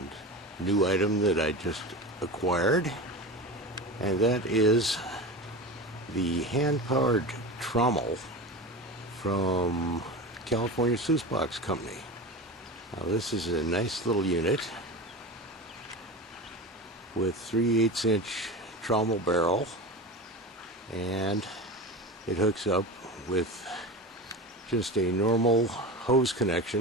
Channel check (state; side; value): normal; both; correlation 0.27